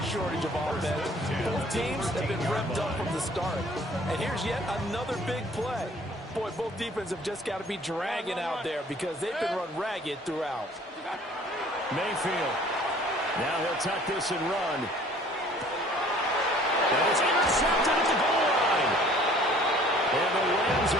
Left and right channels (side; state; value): both; normal; correlation 0.54